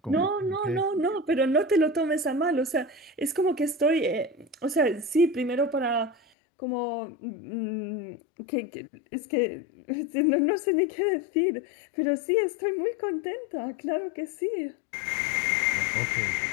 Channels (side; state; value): right; drops out; at 6.2 s